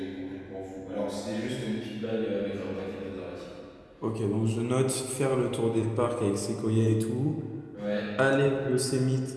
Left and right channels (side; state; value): both; identical; correlation 1.00